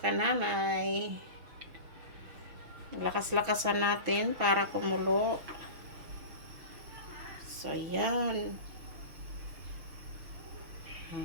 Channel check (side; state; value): left; late; 6.2 ms